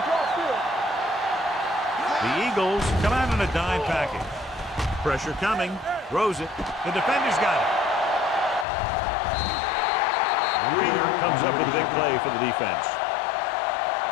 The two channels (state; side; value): drops out; right; at 8.7 s